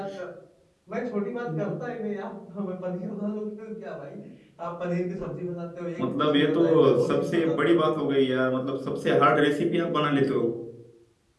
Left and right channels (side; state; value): both; identical; correlation 1.00